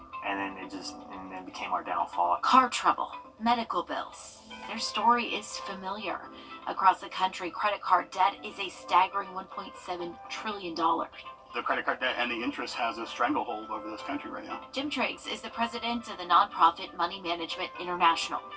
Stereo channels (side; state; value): both; identical; correlation 1.00